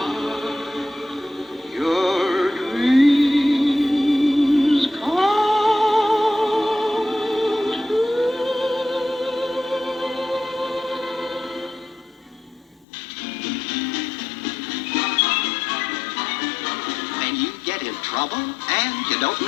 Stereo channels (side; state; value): right; drops out; at 12.9 s